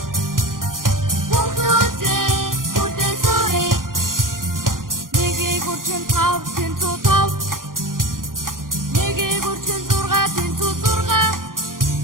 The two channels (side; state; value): left; late; 0.90 ms